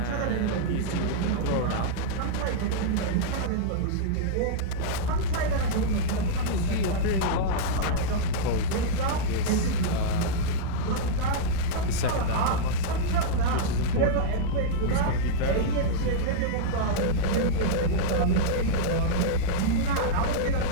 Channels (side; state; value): both; different; correlation -0.03